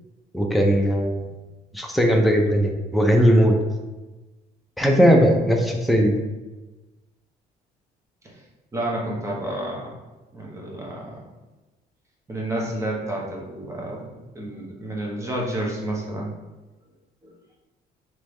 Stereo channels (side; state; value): both; normal; correlation 0.79